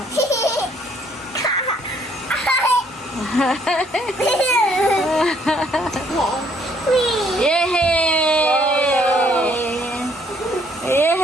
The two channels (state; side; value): normal; both; correlation 0.65